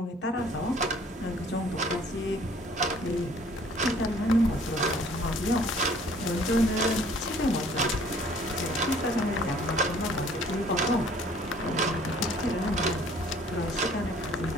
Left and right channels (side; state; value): both; normal; correlation 0.56